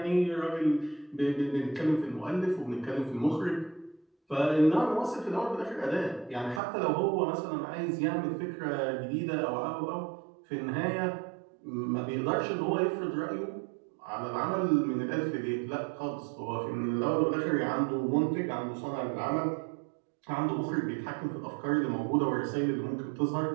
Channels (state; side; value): drops out; left; at 6.6 s